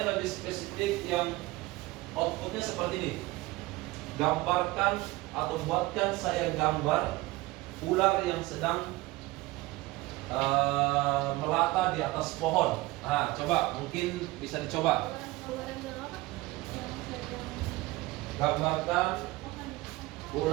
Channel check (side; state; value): left; quieter; 20.1 dB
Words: lebih spesifik yang outputnya seperti ini. Gambarkan atau buatkan saya gambar ular yang sedang melata di atas pohon. Nah, coba mungkin bisa dicoba. Gambarkan